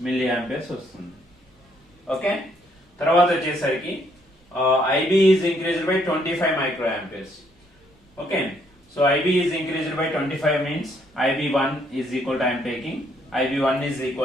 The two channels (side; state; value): both; normal; correlation 0.69